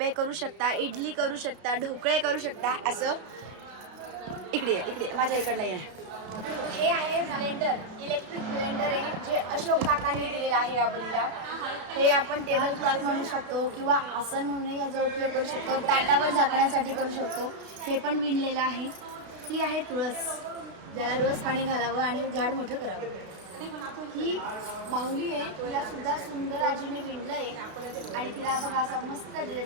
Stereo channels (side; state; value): left; late; 32 ms